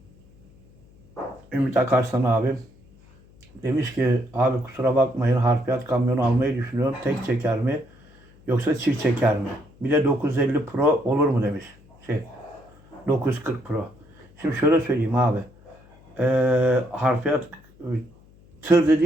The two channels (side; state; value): left; noise; hum, 27 dB below the sound